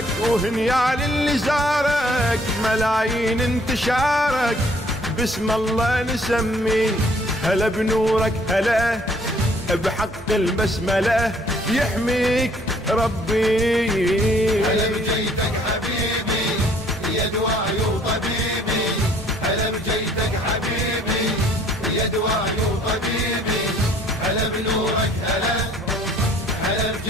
وهنيا للي زارك ملايين انتشارك باسم الله نسمي هلا بنورك هلا بحق البسمله يحميك ربي هلا بجيتك حبيبي يا دواعي وطبيبي هلا بجيتك حبيبي يا دواعي وطبيبي هلا بنورك هلا هلا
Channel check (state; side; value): normal; both; correlation 0.60